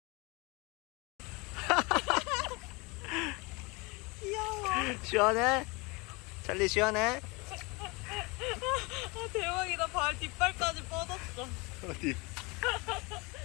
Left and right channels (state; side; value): quieter; right; 27.0 dB